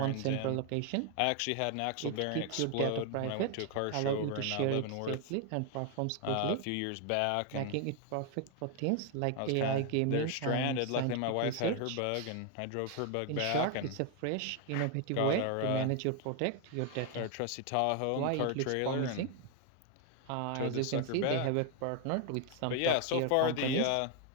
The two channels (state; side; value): different; both; correlation 0.01